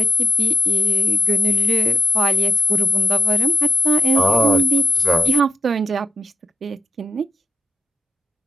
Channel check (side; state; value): both; normal; correlation 0.87